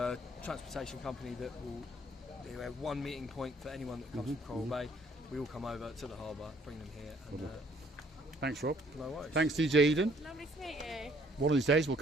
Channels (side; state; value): both; normal; correlation 0.62